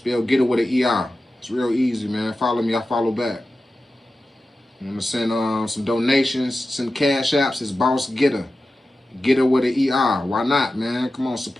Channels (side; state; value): both; normal; correlation 0.93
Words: Getter with an ER. It's real easy, man. Follow me, I follow back. You want to send some donations, send cash apps. It's Boss Getter. Getter with an ER. Why not, man? Come on,